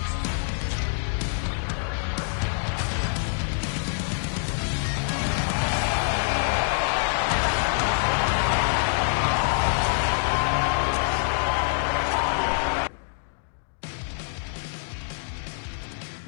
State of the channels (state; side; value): silent; right; digital silence